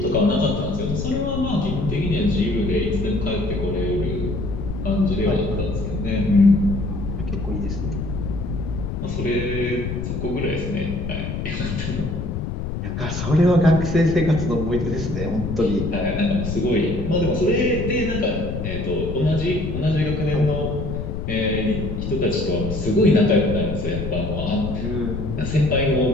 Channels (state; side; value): noise; left; rumble, 4 dB below the sound